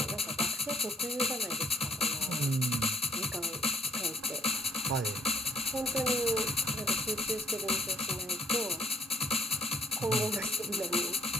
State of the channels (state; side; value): normal; both; correlation 0.65